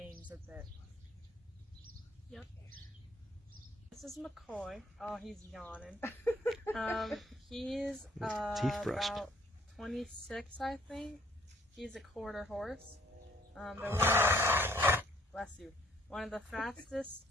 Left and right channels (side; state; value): both; normal; correlation 0.61